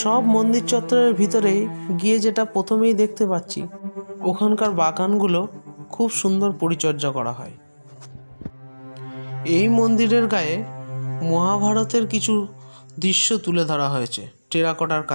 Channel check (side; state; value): both; inverted; correlation -1.00